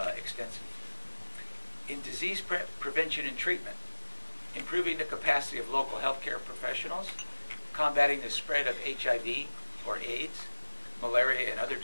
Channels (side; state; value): both; inverted; correlation -1.00